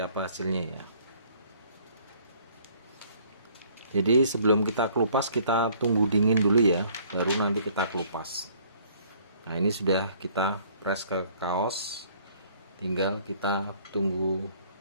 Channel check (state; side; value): inverted; both; correlation -0.59